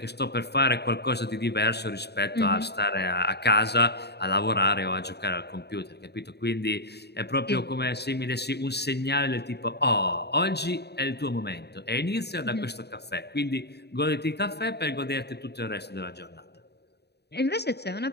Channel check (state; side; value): late; right; 0.48 ms